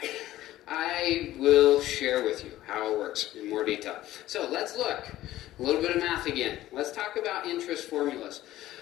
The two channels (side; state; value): right; quieter; 14.7 dB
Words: I will share with you how it works in more detail. So let's look. A little bit of math again. Let's talk about interest formulas.